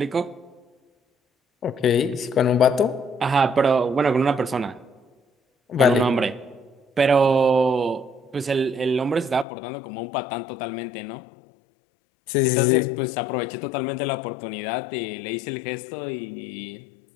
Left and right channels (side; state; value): right; drops out; at 9.5 s